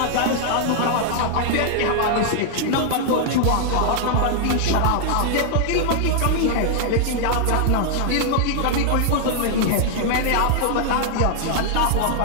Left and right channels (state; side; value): different; both; correlation -0.01